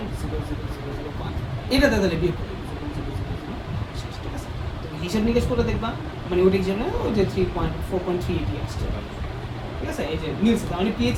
এটা তাহলে বিয়োগ করে দিই, 0.000, ঠিক আছে? তুমি হিসাব নিকেশ করে দেখবা, মানে ওটা হিসাব না, ওই যে 4.380 আসছে, ঠিক আছে? এই যে মিলছে, তার মানে pH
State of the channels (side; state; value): both; identical; correlation 1.00